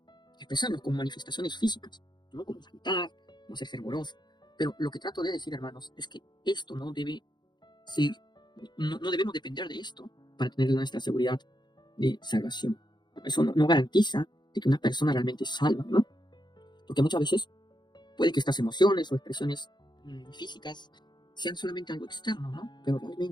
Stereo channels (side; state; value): right; late; 0.21 ms